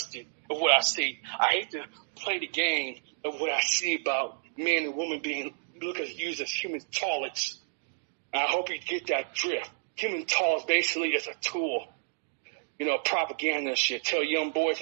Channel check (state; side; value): silent; left; digital silence